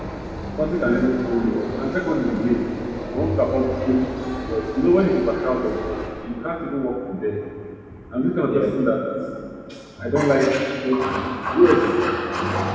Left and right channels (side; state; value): both; identical; correlation 1.00